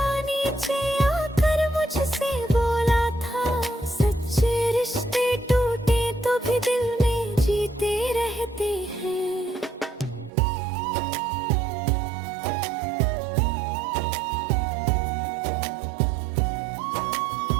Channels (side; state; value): left; drops out; at 10.3 s